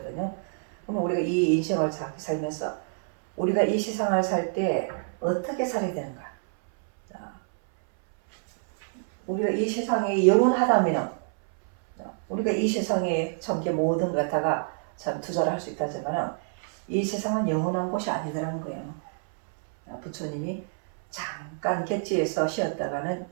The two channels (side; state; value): left; silent; 60 dB below the other